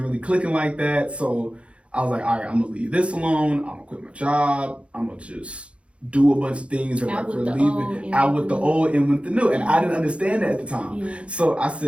really clicking like that. So I was like, all right, I'm gonna leave this alone. I'm gonna quit my job. I'm gonna just do a bunch of things that like for leaving out with the old and with the new. And I didn't understand that at the time. Yeah. So I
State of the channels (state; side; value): late; left; 0.060 ms